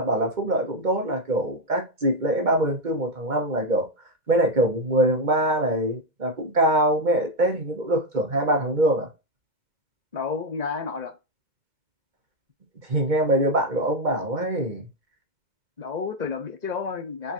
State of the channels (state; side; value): late; left; 2.2 ms